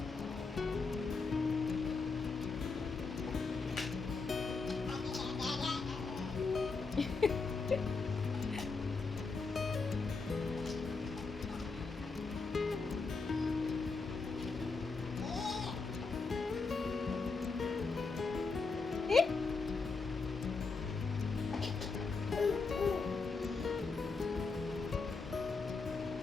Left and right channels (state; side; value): quieter; right; 4.3 dB